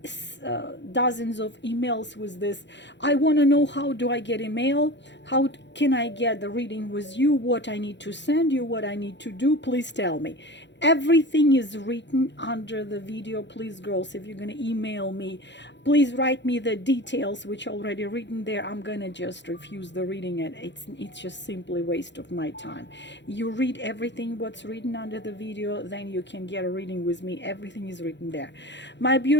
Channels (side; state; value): right; late; 0.52 ms